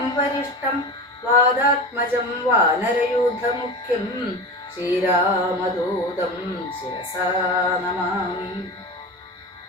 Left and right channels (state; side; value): normal; both; correlation 0.28